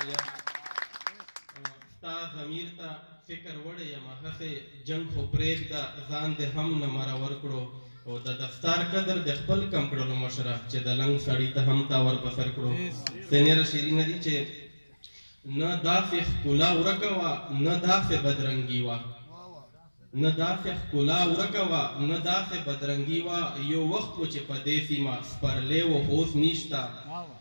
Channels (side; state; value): both; inverted; correlation -1.00